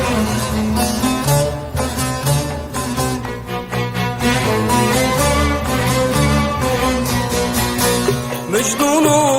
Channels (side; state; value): both; identical; correlation 1.00